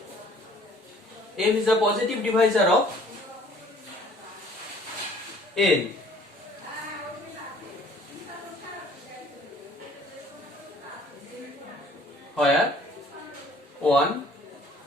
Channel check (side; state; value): both; normal; correlation 0.56